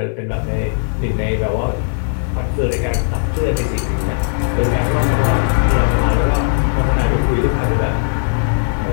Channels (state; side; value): silent; right; 63 dB below the other